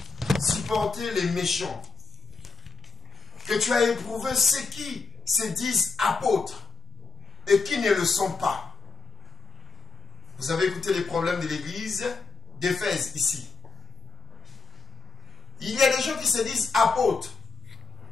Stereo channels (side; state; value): right; quieter; 4.5 dB